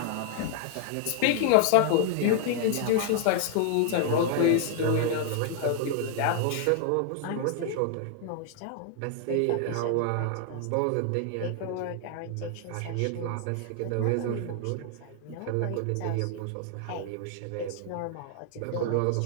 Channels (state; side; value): different; both; correlation 0.00